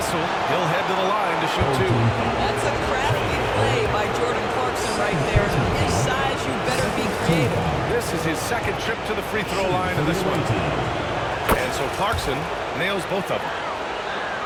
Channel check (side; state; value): both; identical; correlation 1.00